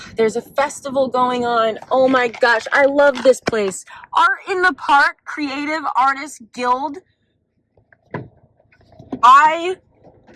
There's a festival going on. Oh my gosh, I love this place. Art in the Park, Creative Artists Guild. I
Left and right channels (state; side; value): identical; both; correlation 1.00